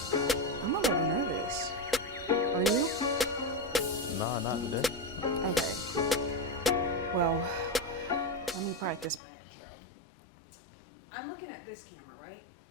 I'm a little nervous. Are you? Nah, not today. Okay. Well, let me practice my intro. I'm looking at this camera, right?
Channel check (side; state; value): right; drops out; at 9.2 s